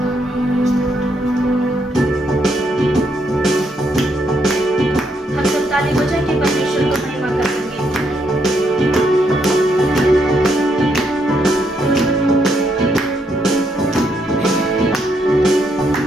हम सब ताली बजा के परमेश्वर को महिमा करेंगे।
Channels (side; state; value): both; normal; correlation 0.76